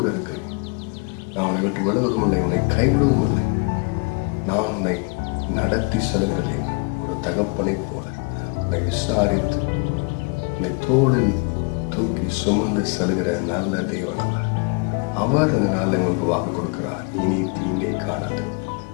இருக்கிறேன், நான் உன்னை விட்டு விலகுவதும் இல்லை, உன்னை கைவிடுவதும் இல்லை, நான் உன்னை நடத்தி செல்கிறதே ஒரு தகப்பனை போல உன்னை விசாரித்து உன்னை தோளில் தூக்கி சுமந்து செல்கிற நல்ல தேவனால அவர் இந்த நாளில் உங்களுக்கு வாக்கு கொடுக்கிறார். இனி தீங்கை காணாது,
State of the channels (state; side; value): quieter; right; 32.6 dB